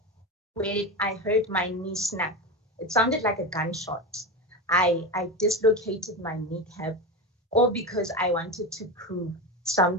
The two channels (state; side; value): normal; both; correlation 0.19